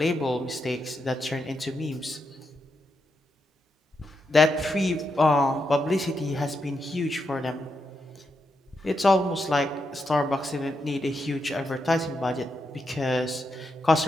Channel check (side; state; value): both; normal; correlation 0.83